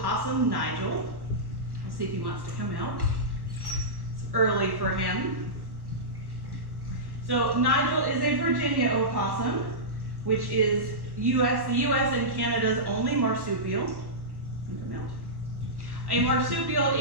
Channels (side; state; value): left; late; 1.1 ms